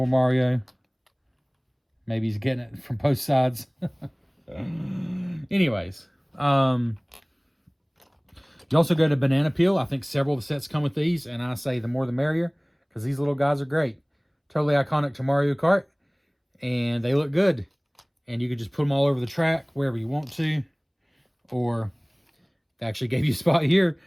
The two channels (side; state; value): both; identical; correlation 1.00